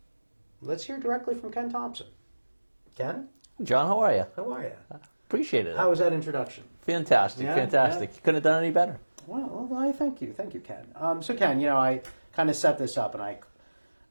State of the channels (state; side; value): inverted; both; correlation -1.00